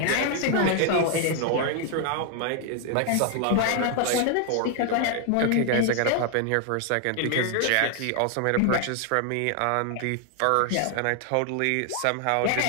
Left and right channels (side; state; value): both; different; correlation 0.00